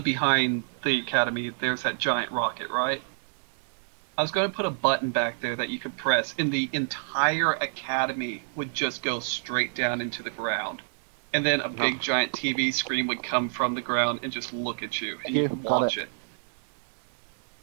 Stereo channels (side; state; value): left; silent; digital silence